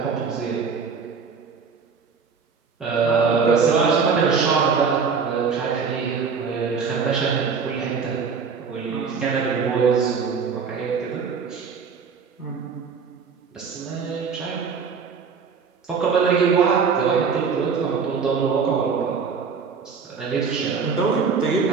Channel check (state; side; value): quieter; left; 5.7 dB